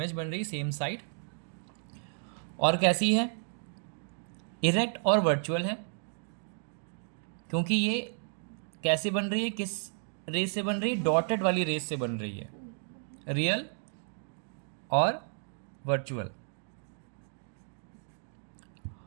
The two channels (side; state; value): left; silent; digital silence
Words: बन रही, सेम साइड। और कैसी है, इरेक्ट और वर्चुअल है, क्योंकि ये कैसे बन रही है, किस रेस से बन रही है, डॉटेड वाली रेस से बन रही है, रियल और वर्चुअल।